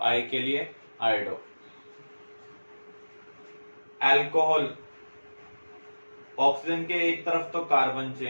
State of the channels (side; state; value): both; inverted; correlation -1.00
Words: I के लिए आयोडो। अल्कोहल, ऑक्सीजन के एक तरफ तो कार्बन